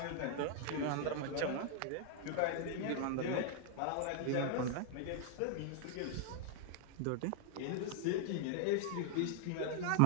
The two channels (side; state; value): both; different; correlation 0.00